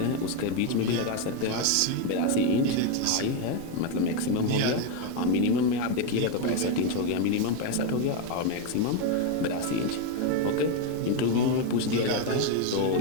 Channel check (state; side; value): different; both; correlation 0.02